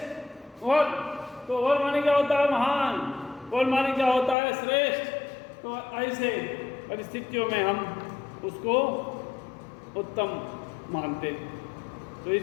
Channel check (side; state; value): right; drops out; at 4.4 s